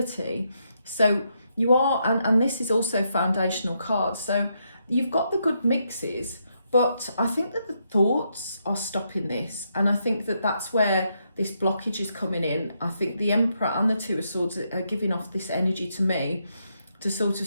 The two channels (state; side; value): inverted; both; correlation -0.79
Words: So you are, and this is also foundational cards. So you've got the good mixes, but I think that the thoughts are stopping this. And I think that that's where this blockage is coming in. I think the Emperor and the Two of Swords are giving off this energy to me to sort of